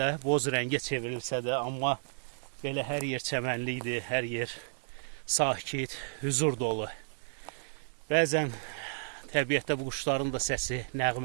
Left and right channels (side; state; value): left; silent; 56 dB below the other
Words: boz rəngə çevrilsə də, amma belə hər yer çəmənlikdir, hər yer sakit, huzur dolu. Bəzən təbiətdə bu quşların da səsi,